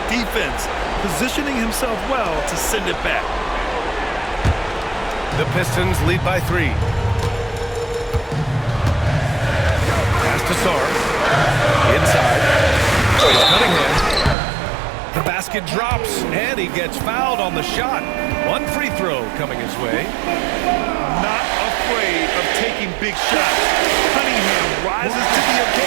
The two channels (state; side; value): drops out; left; at 14.4 s